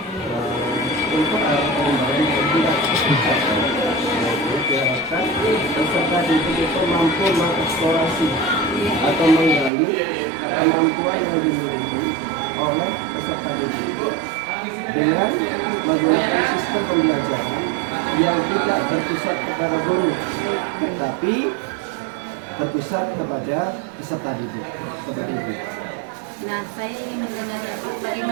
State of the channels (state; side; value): drops out; left; at 9.7 s